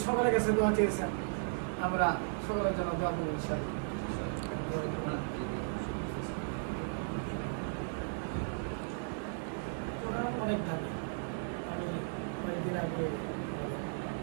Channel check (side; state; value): left; silent; 54 dB below the other